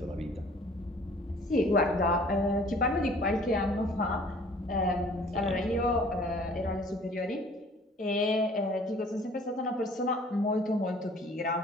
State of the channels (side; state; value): both; normal; correlation 0.53